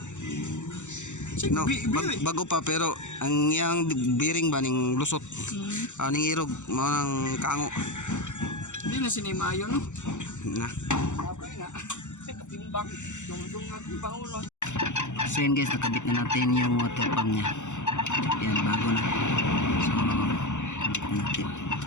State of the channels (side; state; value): right; late; 0.84 ms